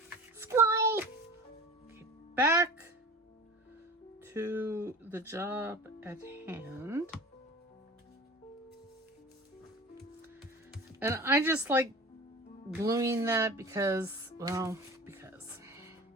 squirrel. Okay, back to the job at hand. And I just like gluing that because, well, because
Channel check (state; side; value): normal; both; correlation 0.38